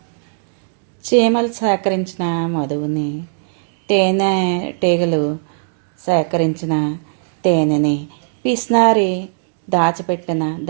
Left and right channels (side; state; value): left; silent; digital silence